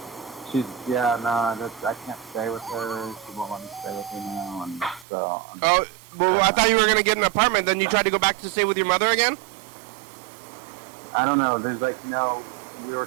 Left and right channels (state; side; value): drops out; left; at 5.1 s